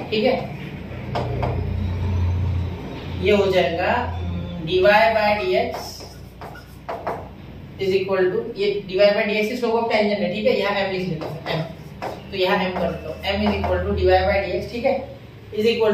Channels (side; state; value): both; identical; correlation 1.00